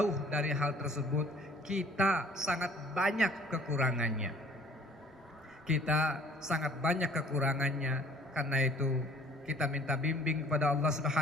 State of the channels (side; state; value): both; normal; correlation 0.54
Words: dari hal tersebut. Kita sangat banyak kekurangannya. Kita sangat banyak kekurangannya. Karena itu kita minta bimbing kepada Allah